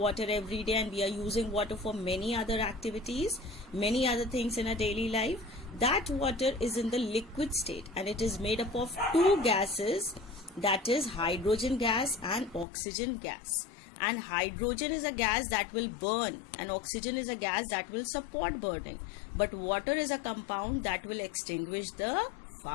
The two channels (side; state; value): right; drops out; at 12.7 s